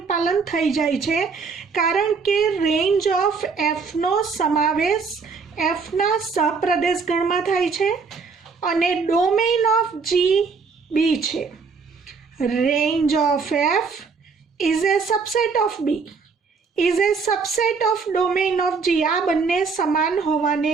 પાલન થઈ જાય છે કારણ કે રેન્જ ઓફ એફનો સમાવેશ એફના સપ્રદેશ ગણમાં થાય છે અને ડોમેઇન ઓફ જી બી છે. Range of F is a subset of B, is a subset of domain of G. આ બંને સમાન હોવાને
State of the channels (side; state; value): left; quieter; 5.0 dB